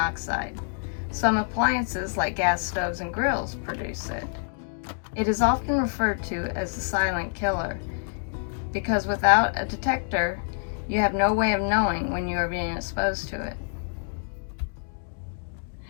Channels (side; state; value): right; silent; digital silence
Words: Some appliances like gas stoves and grills produce it. It is often referred to as the silent killer because without a detector, you have no way of knowing when you are being exposed to it.